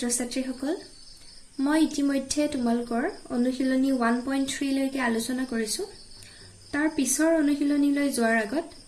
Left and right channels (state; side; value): identical; both; correlation 1.00